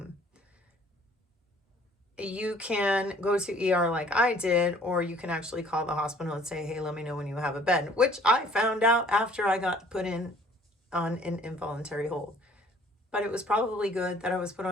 You can go to ER like I did, or you can actually call the hospital and say, hey, let me know when you have a bed, which I found out after I got put on an involuntary hold. But it was probably good that I was put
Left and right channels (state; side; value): normal; both; correlation 0.55